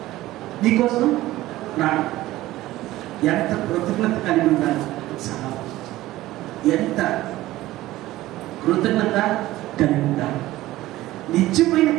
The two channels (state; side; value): quieter; left; 16.4 dB